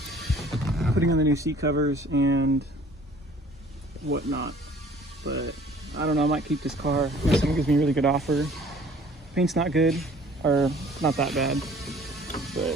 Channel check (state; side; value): normal; both; correlation 0.53